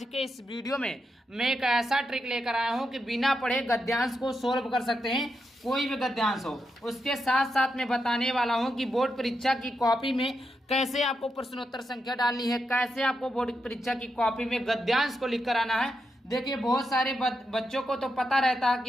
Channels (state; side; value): normal; both; correlation 0.85